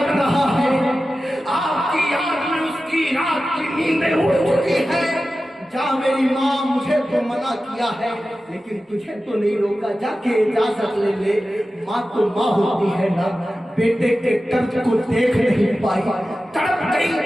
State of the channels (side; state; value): both; normal; correlation 0.94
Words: रहा है, आपकी याद में उसकी रात की नींदें उड़ चुकी है। जा मेरी माँ, मुझे तो मना किया है लेकिन तुझे तो नहीं रोका, जाके इजाजत ले ले। माँ तो माँ होती है ना, बेटे के दर्द को देख नहीं पाई, तड़प गई।